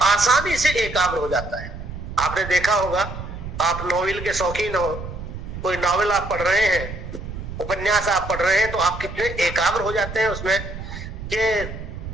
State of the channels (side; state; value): right; noise; rumble, 9 dB below the sound